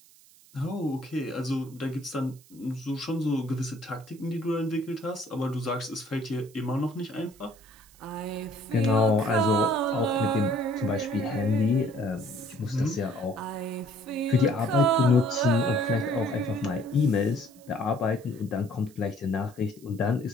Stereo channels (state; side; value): noise; right; hiss, 26 dB below the sound